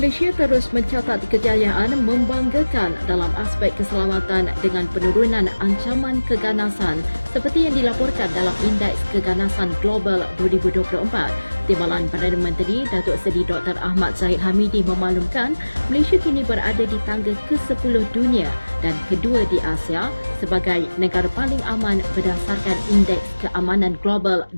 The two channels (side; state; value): both; inverted; correlation -1.00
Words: terus mencatat kejayaan membanggakan dalam aspek keselamatan dengan penurunan ancaman keganasan seperti yang dilaporkan dalam Indeks Keganasan Global 2024. Timbalan Perdana Menteri Datuk Seri Dr. Ahmad Zahid Hamidi memaklumkan Malaysia kini berada di tangga ke-10 dunia dan kedua di Asia sebagai negara paling aman berdasarkan Indeks Keamanan Global